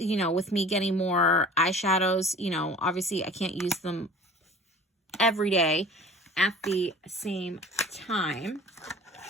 know, with me getting more eyeshadows, you know, obviously I can't use them every day at the same time.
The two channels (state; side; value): normal; both; correlation 0.43